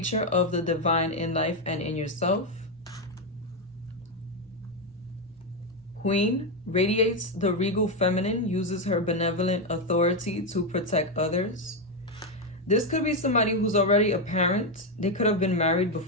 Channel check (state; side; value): normal; both; correlation 0.05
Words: of the divine in life and in yourself. Queen, radiates the regal feminine, uses her benevolent authority to protect others. This could be somebody who's already a parent. They could have been married